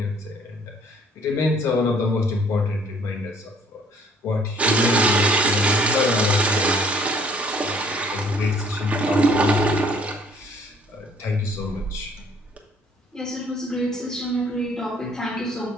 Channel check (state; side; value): normal; both; correlation 0.59